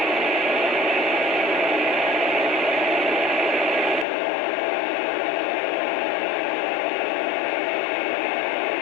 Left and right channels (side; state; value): right; drops out; at 4.0 s